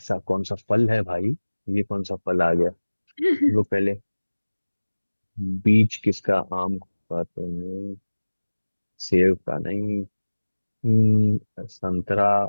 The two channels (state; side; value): inverted; both; correlation -1.00